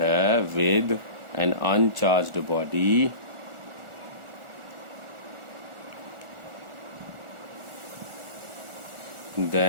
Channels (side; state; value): left; late; 1.4 ms